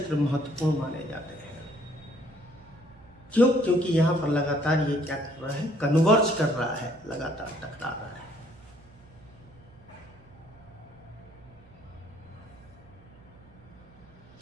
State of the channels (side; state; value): right; noise; hum, 24 dB below the sound